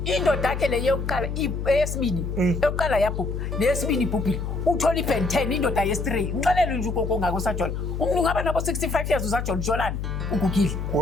indoda yakhe le yokuqala eyesibini yokuqala yabhubha neyesibini ibhubhile uthola iBen 10 indoda yesi3 ngixelele nje ukoko ngako sajola umuntu ngaba nabo 65 years usajola Jolani ugugile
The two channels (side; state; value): left; noise; hum, 4 dB below the sound